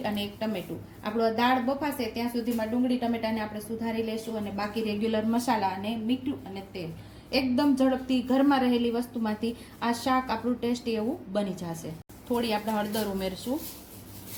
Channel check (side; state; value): both; identical; correlation 1.00